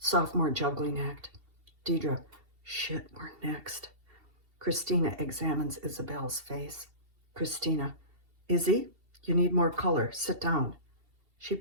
juggling act. Deidre, shit, we're next. Christina examines Isabel's face. Christina, Izzy, you need more color. Sit down. She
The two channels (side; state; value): left; late; 2.7 ms